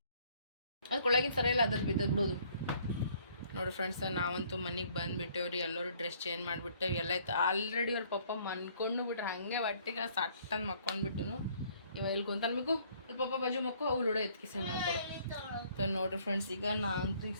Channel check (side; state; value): both; inverted; correlation -0.61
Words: ಅದು ಕೊಳ್ಳಾಗಿನ ಸರ ಇಲ್ಲ ಅದ್ರ ಬಿದ್ದದ್ ಬಿಡೋದು ನೋಡಿ ಫ್ರೆಂಡ್ಸ್ ನಾವಂತೂ ಮನೆಗೆ ಬಂದುಬಿಟ್ಟೇವ್ರಿ ಎಲ್ಲರೂ ಡ್ರೆಸ್ ಚೇಂಜ್ ಮಾಡಿಬಿಟ್ಟೇವೆ ಎಲ್ಲ ಆಯ್ತು ಆಲ್ರೆಡಿ ಅವ್ರ ಪಪ್ಪ ಮನ್ಕೊಂಡು ಬಿಟ್ರೆ ಹಾಗೆ ಒಟ್ಟಿಗೆ ಸಟ್ಟಂದು ಮಕ್ಕೊಂಡ್ಬಿಟ್ಟು ಇವ ಇಲ್ಲಿ ಕುಂತಲ್ಬೇಕು ಅಲ್ಲಿ ಪಪ್ಪ ಬಾಜು ಮಕ್ಕಳು ಅವು ಲೂಡೋ ಎತ್ಕಿಸಿ ಮಾಡ್ಕೊಡು ನೋಡ್ರಿ ಫ್ರೆಂಡ್ಸ್ ಈಗ ನಾನಂತೂ ಈಗ